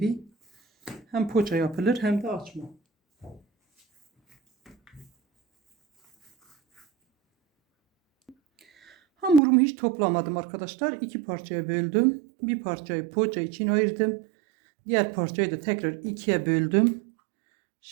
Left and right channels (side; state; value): left; drops out; at 9.4 s